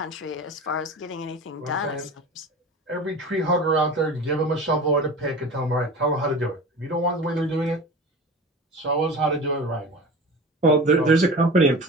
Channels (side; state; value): both; normal; correlation 0.34